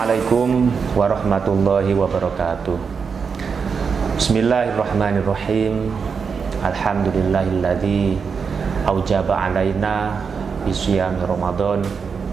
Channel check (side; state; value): left; quieter; 5.8 dB